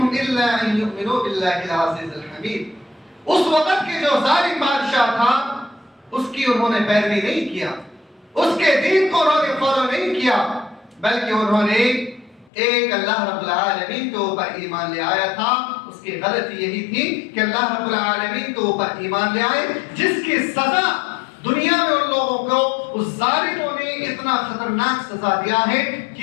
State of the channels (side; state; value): right; drops out; at 12.5 s